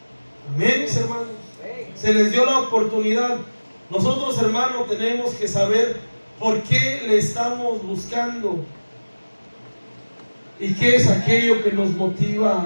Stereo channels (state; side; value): inverted; both; correlation -1.00